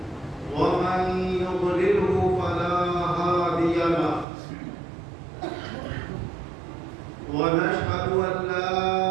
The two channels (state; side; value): drops out; left; at 4.2 s